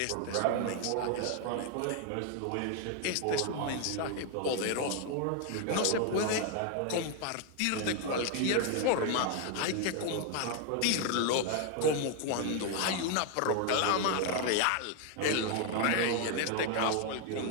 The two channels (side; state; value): both; different; correlation 0.01